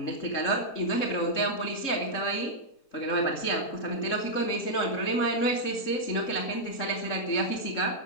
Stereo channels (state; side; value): late; right; 3.7 ms